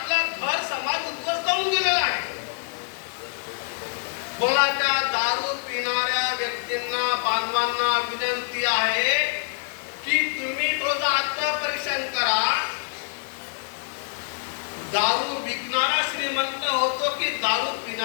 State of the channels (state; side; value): silent; right; digital silence